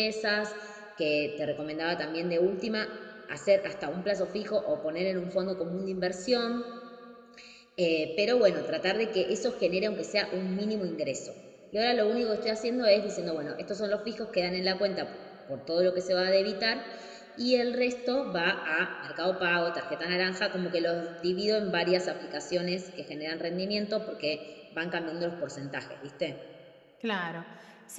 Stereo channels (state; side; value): identical; both; correlation 1.00